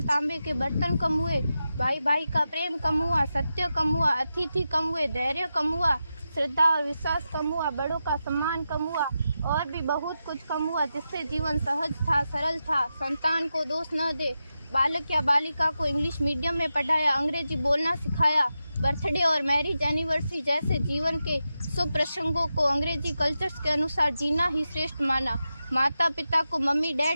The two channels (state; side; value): inverted; both; correlation -0.90